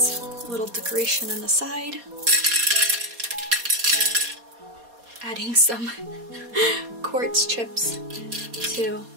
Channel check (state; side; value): late; left; 4.2 ms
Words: little decoration on the side, adding some quartz chips to